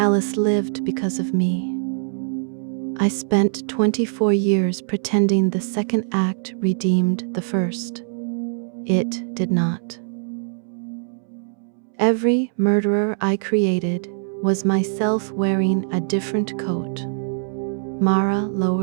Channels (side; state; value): left; silent; 64 dB below the other